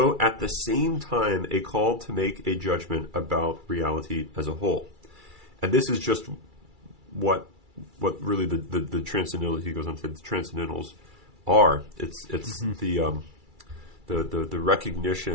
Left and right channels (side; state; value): left; late; 2.3 ms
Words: at the same time a call to make a judgment about reality as a whole. And this is just what really the transcendental, he goes on to the transcendentals are. It's the